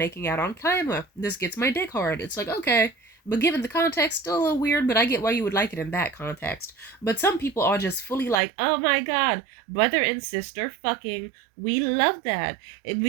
out on camera. This gets my dick hard. It's like, okay. But given the context, still a little weird, but I get why you would like it in that context. But some people are just fully like, oh my god, brother and sister fucking, we love that.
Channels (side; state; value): left; drops out; at 8.3 s